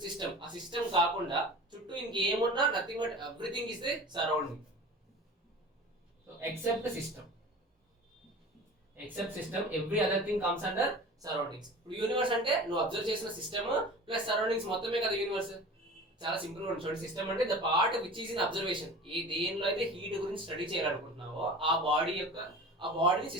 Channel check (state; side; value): normal; both; correlation 0.38